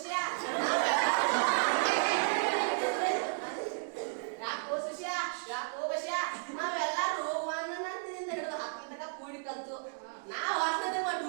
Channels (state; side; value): silent; left; digital silence